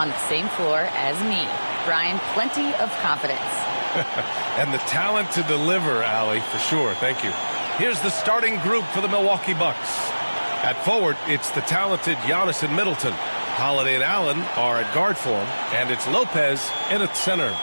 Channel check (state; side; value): inverted; both; correlation -1.00